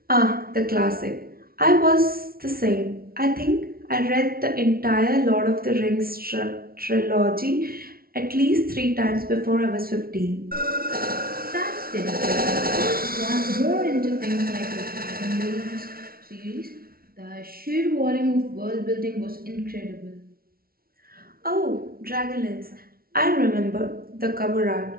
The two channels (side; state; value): left; late; 0.43 ms